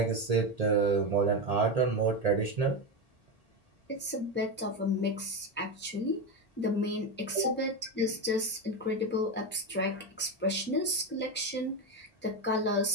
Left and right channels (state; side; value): normal; both; correlation 0.15